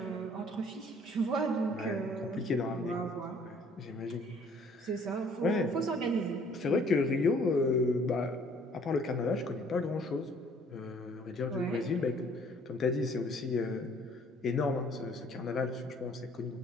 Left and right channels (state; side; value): normal; both; correlation 0.58